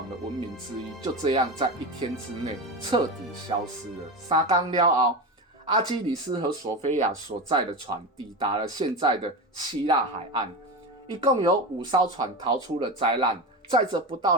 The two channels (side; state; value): both; normal; correlation 0.22